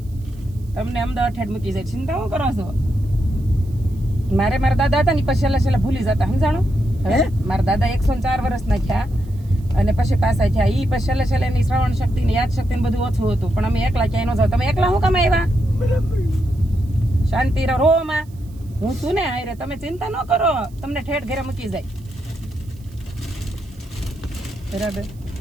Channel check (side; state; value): right; noise; hiss, 29 dB below the sound